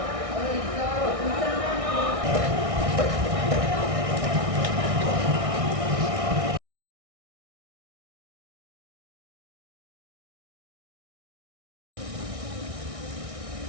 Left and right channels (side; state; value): left; late; 1.6 ms